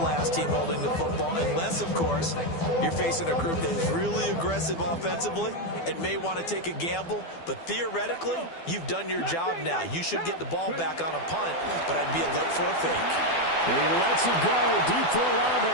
team holding the football, unless, of course, you're facing a group that is really aggressive offensively and may want to take a gamble. But theoretically, you've done your job now. You should get the ball back on a punt, but I'd be alert for a fake. He lets it go deep for Olave.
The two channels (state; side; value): late; right; 12 ms